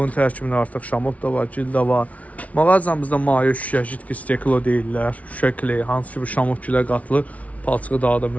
tərkibində artıq şamot da var, gil də var. Mağazamızda maye şüşə, jitki steklo deyirlər. Şüşə kley, hansı ki bu şamot gilə qatılır. Palçığı daha da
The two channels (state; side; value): late; right; 0.067 ms